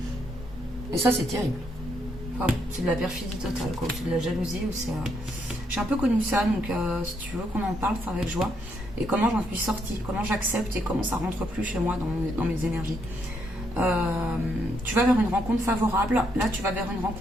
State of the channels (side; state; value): both; normal; correlation 0.75